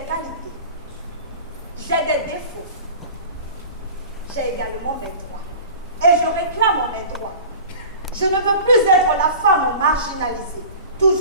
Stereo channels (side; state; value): both; inverted; correlation -0.38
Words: qualités. J'ai des défauts. J'ai également mes droits. Et je réclame mes droits. Je ne veux plus être la femme marginalisée,